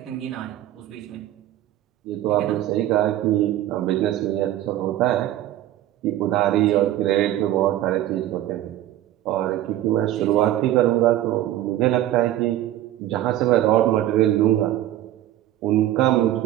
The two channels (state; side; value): quieter; left; 13.5 dB